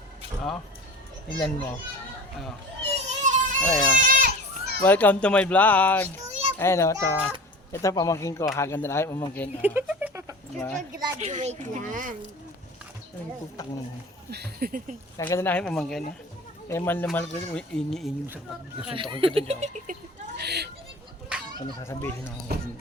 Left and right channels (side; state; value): both; normal; correlation 0.37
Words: Oh, tingnan mo. Oh. Ayan. Welcome to my vlog. Ayan o, ito pamangkin ko. Haganda na kayo pamangkin. Oh. Diba? Graduate lang. Ay, putang mo. Haganda na kayo pamangkin. Eh, mahal na mahal ko. Ini-ini sa pagkasuntokin ko dyan. Ano sasabihin ako?